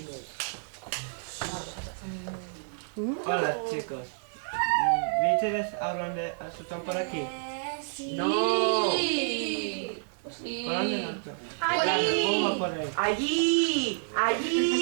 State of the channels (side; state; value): left; silent; 55 dB below the other